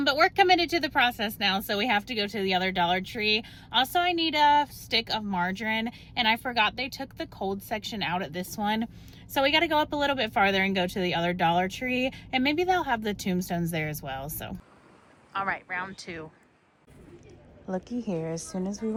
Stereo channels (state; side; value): identical; both; correlation 1.00